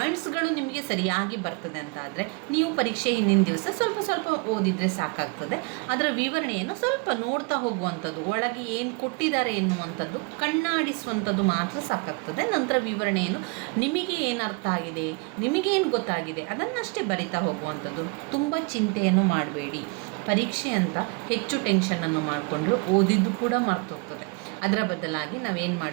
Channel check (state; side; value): quieter; left; 30.6 dB